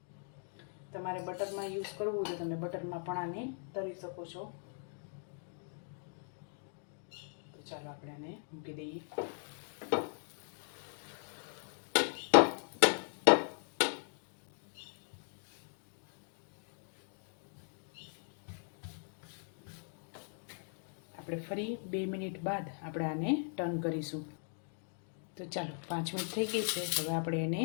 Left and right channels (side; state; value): right; silent; 52 dB below the other